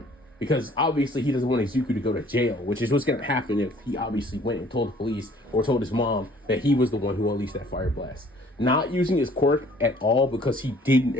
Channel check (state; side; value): normal; both; correlation 0.56